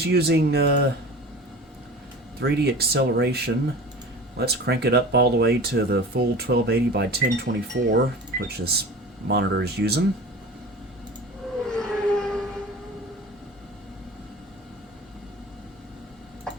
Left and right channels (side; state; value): both; normal; correlation 0.36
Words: using 3D acceleration. Let's crank it up all the way to the full 1280 by 1024, which this monitor is using.